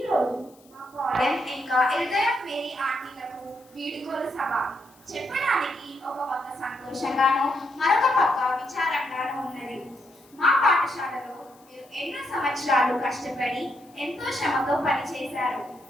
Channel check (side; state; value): left; noise; hiss, 29 dB below the sound